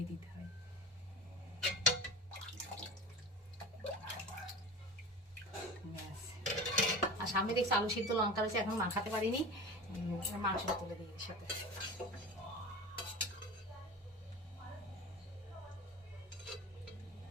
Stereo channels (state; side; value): normal; both; correlation 0.32